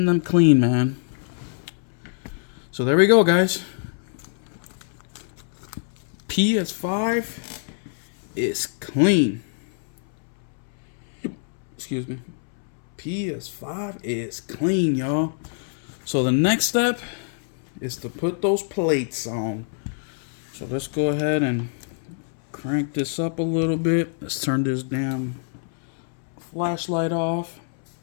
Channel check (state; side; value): silent; right; 62 dB below the other